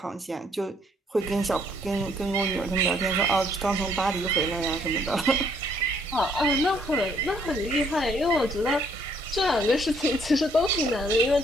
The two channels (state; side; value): normal; both; correlation 0.66